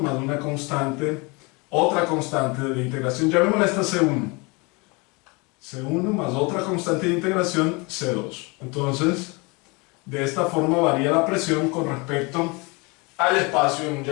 una constante, otra constante de integración, llamémosla esta C1. C1 más otra constante de integración, C2. Entonces, de esta forma varía la presión con respecto al espacio en un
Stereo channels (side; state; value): right; quieter; 28.0 dB